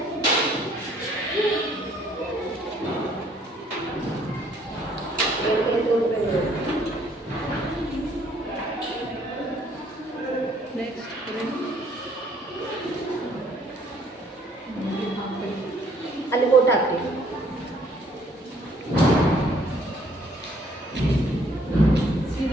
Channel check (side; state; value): both; normal; correlation 0.63